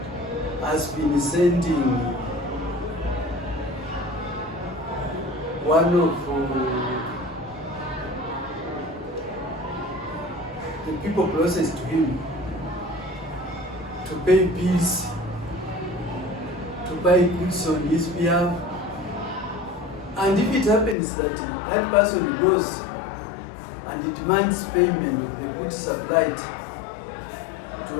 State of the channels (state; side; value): drops out; right; at 21.0 s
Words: has been sending one of the people closest to him to pay bills, to buy goods on his behalf, and if it happens that that person goes and demands payment of the goods supplied